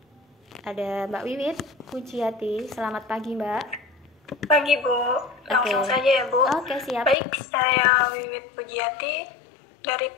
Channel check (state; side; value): drops out; right; at 7.2 s